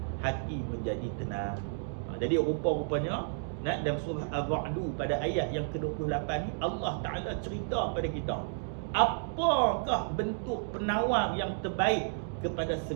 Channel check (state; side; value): silent; left; digital silence